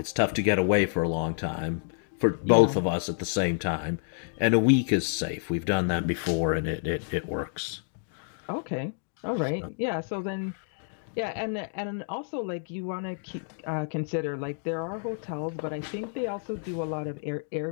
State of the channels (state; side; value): silent; right; digital silence